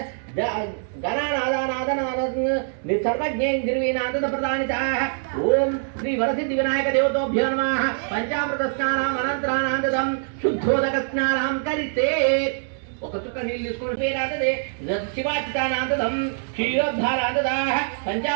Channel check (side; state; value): left; silent; digital silence